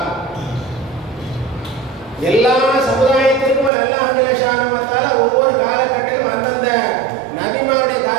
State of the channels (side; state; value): left; drops out; at 3.7 s